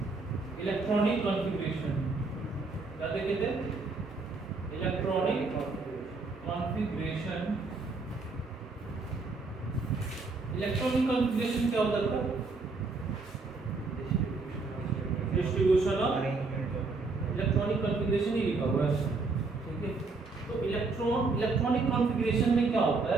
इलेक्ट्रॉनिक कॉन्फ़िगरेशन। क्या देखे थे? Electronic configuration. इलेक्ट्रॉनिक कॉन्फ़िगरेशन क्या होता था? डिस्ट्रीब्यूशन ऑफ इलेक्ट्रॉनिक कॉन्फ़िगरेशन ही लिखा हुआ है, ठीक है। तो इलेक्ट्रॉनिक कॉन्फ़िगरेशन में क्या होता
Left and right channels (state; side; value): quieter; left; 3.9 dB